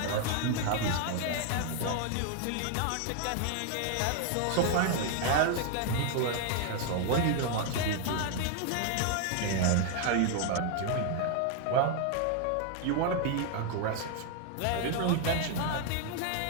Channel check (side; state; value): both; different; correlation 0.00